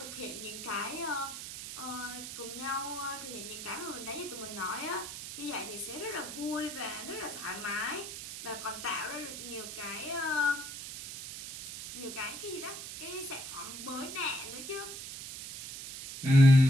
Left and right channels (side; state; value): right; noise; hiss, 9 dB below the sound